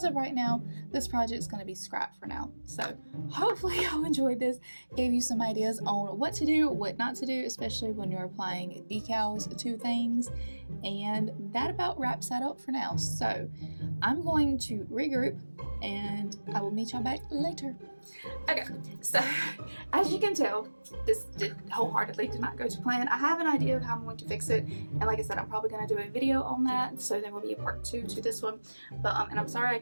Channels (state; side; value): inverted; both; correlation -1.00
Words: of right now, this project is going to be scrapped for now. So hopefully y'all enjoyed this, gave you some ideas on what to do, what not to do, especially when you're applying decals to things. And that about wraps that up for now. So I'm going to regroup, and I will meet y'all back later. Okay, so as you can tell, this wholeheartedly did not go to plan. I have an idea of how I'm going to fix it, and like I said, I'm probably going to do a video on that, so there will be a part 2 to this one. But and I'm sorry I